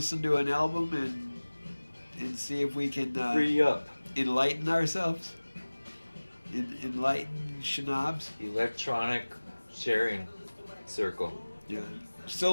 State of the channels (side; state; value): both; inverted; correlation -1.00